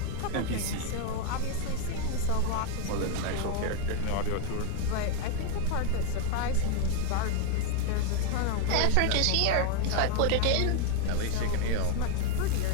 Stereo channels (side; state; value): both; different; correlation 0.01